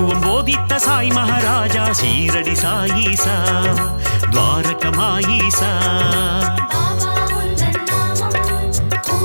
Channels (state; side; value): inverted; both; correlation -1.00